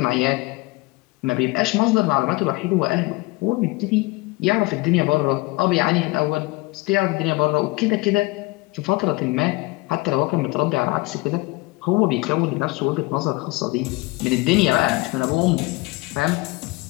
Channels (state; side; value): quieter; right; 22.6 dB